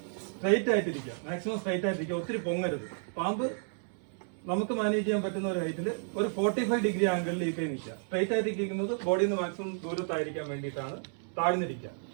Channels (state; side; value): silent; left; 57 dB below the other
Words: സ്ട്രൈറ്റ് ആയിട്ടിരിക്കുക, മാക്സിമം സ്ട്രൈറ്റ് ആയിട്ടിരിക്കുക, ഒത്തിരി പൊങ്ങരുത്. പാമ്പ് നമുക്ക് മാനേജ് ചെയ്യാൻ പറ്റുന്ന ഒരു ഹൈറ്റിൽ ഒരു 45 ഡിഗ്രി ആംഗിളിൽ ഈ കൈ നിൽക്കുക. സ്ട്രൈറ്റ് ആയിട്ടിരിക്കുന്നത് ബോഡിയിൽ നിന്ന് മാക്സിമം ദൂരത്തായിരിക്കാൻ വേണ്ടിയിട്ടാണ്. താഴ്ന്നിരിക്കുക,